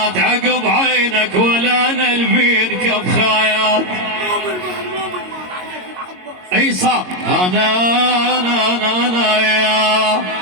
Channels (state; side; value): late; left; 22 ms